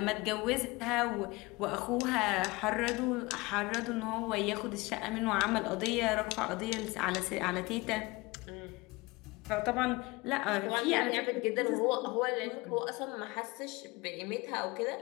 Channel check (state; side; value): quieter; right; 23.4 dB